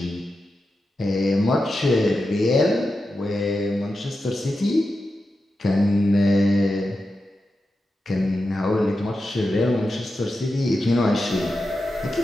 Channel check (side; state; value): both; normal; correlation 0.90